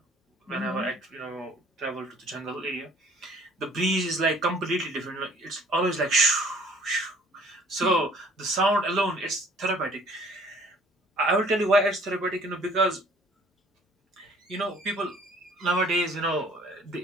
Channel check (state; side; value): normal; both; correlation 0.55